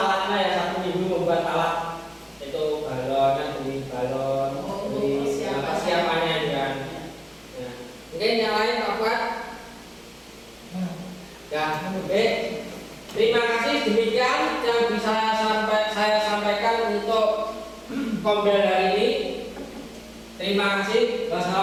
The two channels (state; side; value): identical; both; correlation 1.00